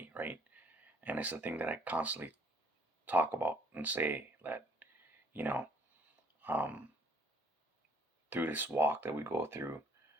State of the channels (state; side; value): normal; both; correlation 0.62